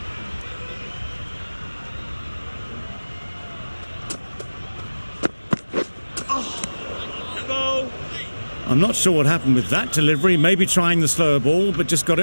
Go. I'm not sure what happened with that delivery. Maybe trying the slower ball, but just got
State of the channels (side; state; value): both; inverted; correlation -1.00